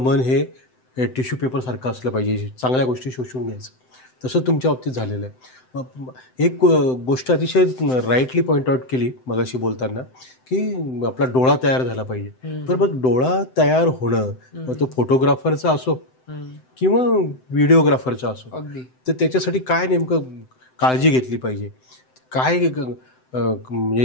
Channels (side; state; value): right; late; 7.8 ms